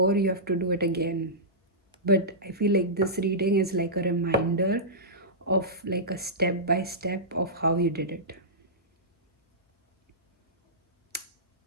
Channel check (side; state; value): both; normal; correlation -0.16